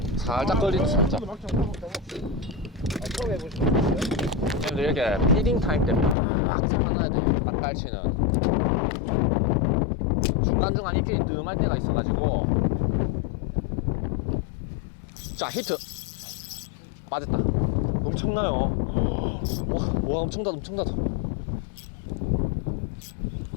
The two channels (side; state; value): right; drops out; at 6.2 s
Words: 살짝 걸리네 살짝. 처음 해보시죠. 형들 이렇게 피딩 타임 때 막 잡아놔야 돼. 딱 깔치는 중간중간 입질이 뜸할 때가 있어가지고. 자, 히트 빠졌다. 엄청나요. 와 엄청나다 엄청나다.